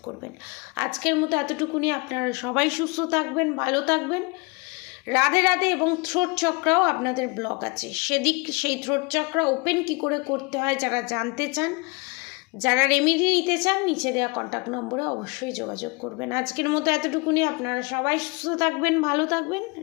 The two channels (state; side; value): quieter; right; 28.9 dB